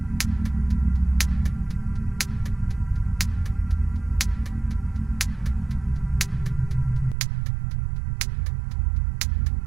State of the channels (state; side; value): drops out; left; at 7.2 s